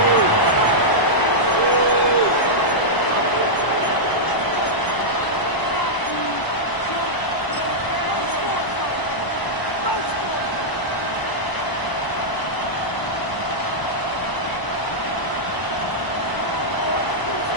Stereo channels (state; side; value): late; right; 1.0 ms